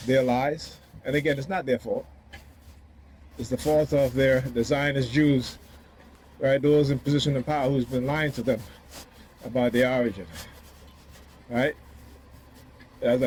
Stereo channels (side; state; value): both; identical; correlation 1.00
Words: their lies. And again, it's not their fault. It's the fault of the Zionist Jews, right? Those in position of power who's been lying to them about their origin, right? As